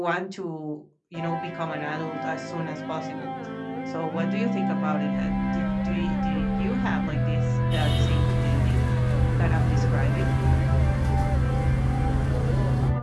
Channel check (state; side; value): identical; both; correlation 1.00